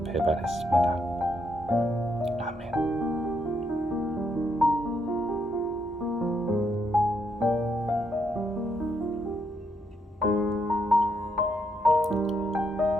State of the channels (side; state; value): both; normal; correlation 0.77